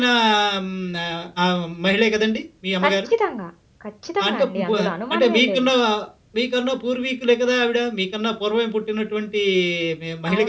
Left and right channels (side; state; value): both; identical; correlation 1.00